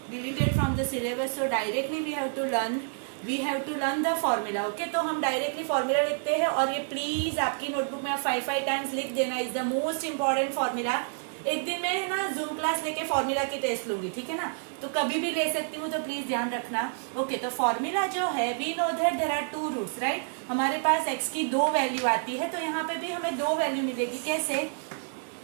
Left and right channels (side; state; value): left; silent; digital silence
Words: deleted from the syllabus, so directly we have to learn the formula. Okay, तो हम directly formula लिखते हैं, और ये please आपकी notebook में आप 5 times लिख देना. is the most important formula. एक दिन में ना जूम क्लास लेके फॉर्मूला की टेस्ट लूंगी, ठीक है ना, तो कभी भी ले सकती हूँ, तो प्लीज ध्यान रखना. ओके, तो फॉर्मूला जो है, we know that there are 2 roots, right. हमारे पास x की 2 वैल्यू आती है, तो यहाँ पे भी हमें 2 वैल्यू मिलेगी. कैसे?